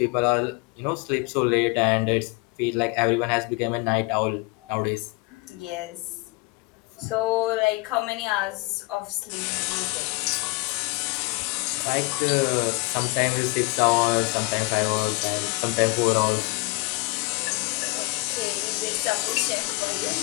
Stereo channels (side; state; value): right; quieter; 25.3 dB